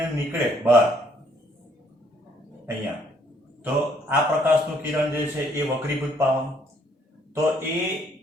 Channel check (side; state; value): both; normal; correlation 0.66